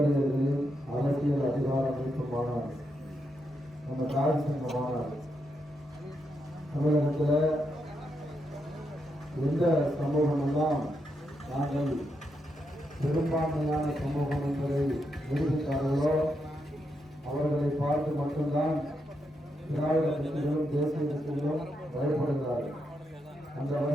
அரசியல் அதிகார மீட்பு மாநாடு, நம்ம தாய் சங்க மாநாடு தமிழகத்தில் எந்த சமூகம் எல்லாம் நாங்கள் பெரும்பான்மையான சமூகம் என்பதை நிரூபித்தார்களோ அவர்களை பார்த்து மட்டும்தான் திராவிட கட்சிகளும் தேசிய கட்சிகளும் பயப்படுகிறார்கள். அந்த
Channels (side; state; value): both; normal; correlation 0.82